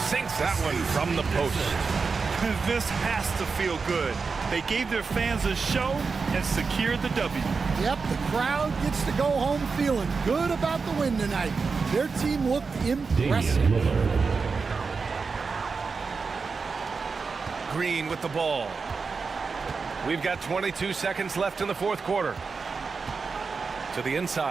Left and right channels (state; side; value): quieter; left; 4.8 dB